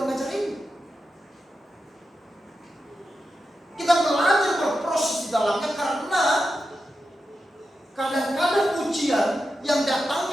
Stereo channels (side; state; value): both; normal; correlation 0.90